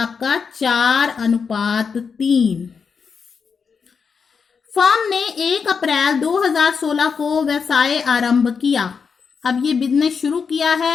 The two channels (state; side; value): quieter; right; 5.8 dB